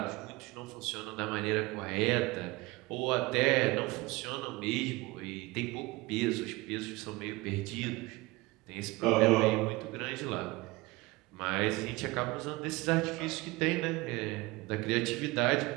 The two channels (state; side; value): quieter; left; 22.0 dB